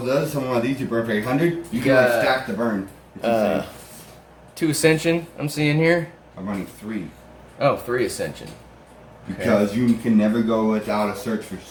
of those, summon one of these, you burn for 800. You can like stack the burn. 2 Ascension, I'm seeing here. I'm running 3. Oh, 3 Ascension. Because you can never go without a search for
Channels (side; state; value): both; identical; correlation 1.00